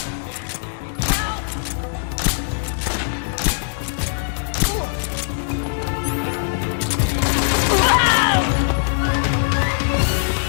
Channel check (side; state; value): right; silent; digital silence